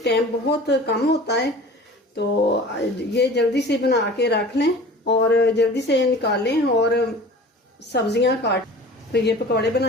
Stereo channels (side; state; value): both; normal; correlation 0.41